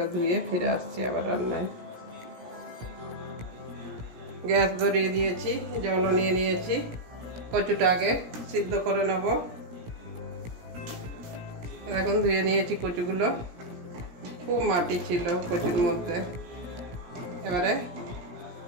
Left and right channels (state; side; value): late; left; 17 ms